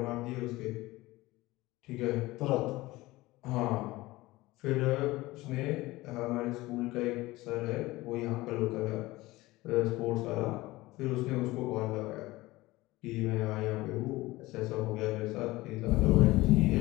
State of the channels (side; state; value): right; quieter; 19.4 dB